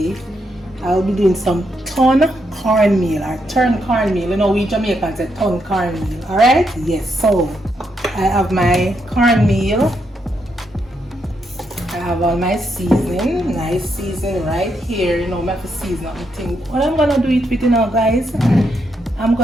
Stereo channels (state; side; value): normal; both; correlation 0.80